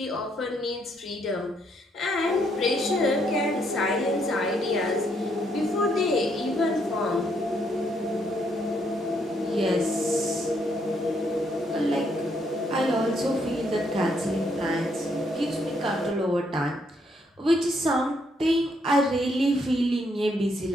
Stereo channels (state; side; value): normal; both; correlation 0.73